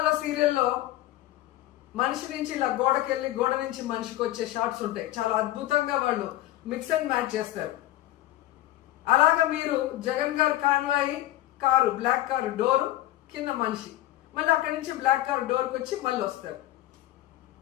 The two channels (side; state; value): right; quieter; 15.1 dB